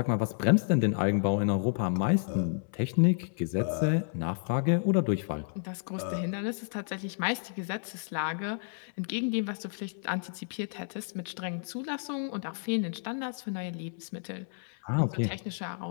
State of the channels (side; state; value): right; silent; 57 dB below the other